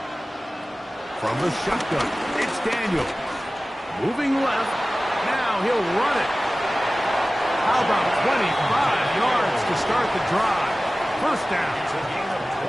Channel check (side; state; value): both; normal; correlation 0.97